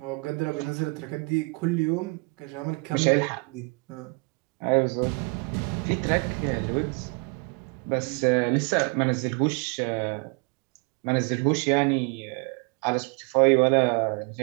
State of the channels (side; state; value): left; quieter; 32.4 dB